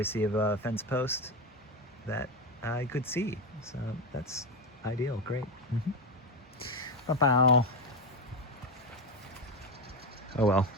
of a fence post that I could see. So that's ideal, great. Bow. Oh well,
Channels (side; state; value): both; normal; correlation 0.13